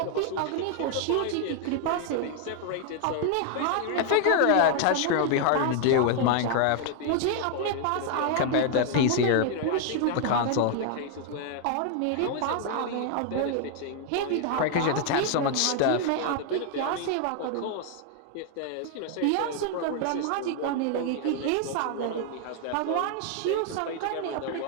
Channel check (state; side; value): different; both; correlation 0.00